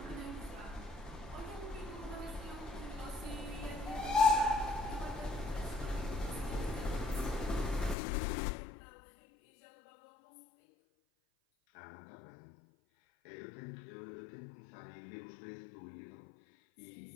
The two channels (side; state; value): right; drops out; at 8.0 s